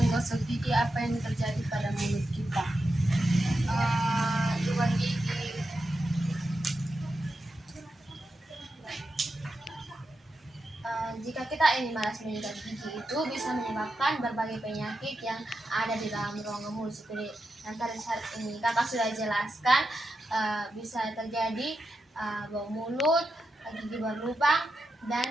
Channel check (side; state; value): both; normal; correlation 0.88